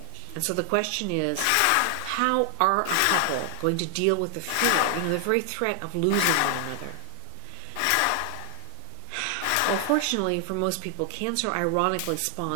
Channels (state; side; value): different; both; correlation 0.00